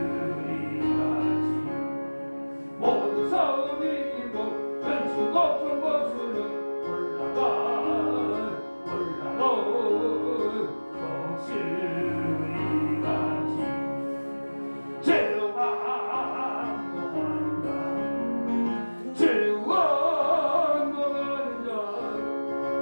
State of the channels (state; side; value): inverted; both; correlation -1.00